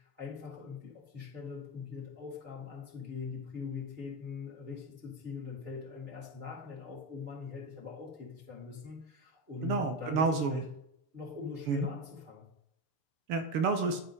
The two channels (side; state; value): left; late; 6.8 ms